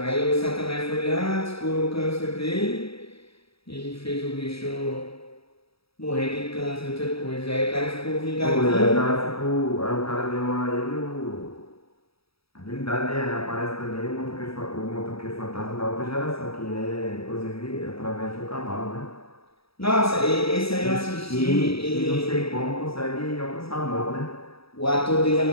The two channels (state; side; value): late; right; 0.77 ms